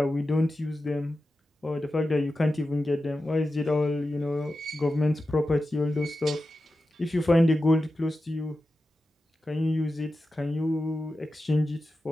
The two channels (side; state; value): both; normal; correlation 0.92